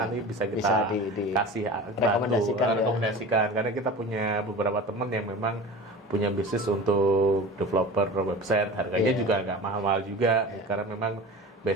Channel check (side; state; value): both; normal; correlation 0.35